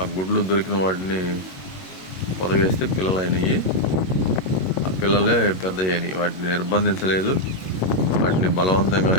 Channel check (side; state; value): right; late; 21 ms